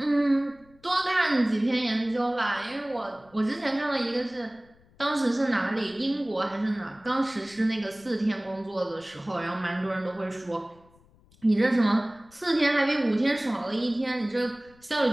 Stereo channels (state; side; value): noise; left; rumble, 29 dB below the sound